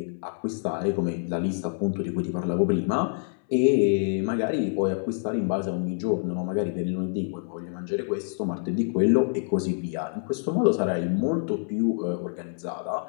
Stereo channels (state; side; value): silent; right; 60 dB below the other